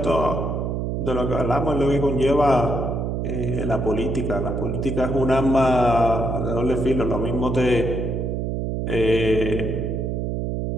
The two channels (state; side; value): noise; right; hum, 1 dB below the sound